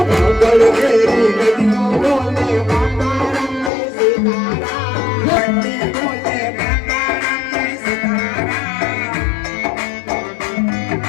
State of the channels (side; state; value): right; drops out; at 3.7 s